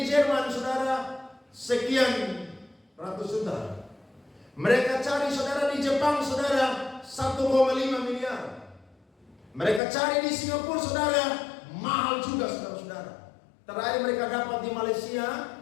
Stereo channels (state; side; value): drops out; right; at 9.8 s